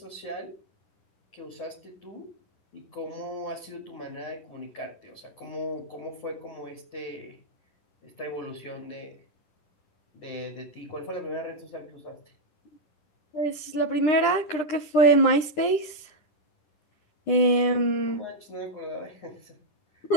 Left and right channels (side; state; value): right; late; 9.9 ms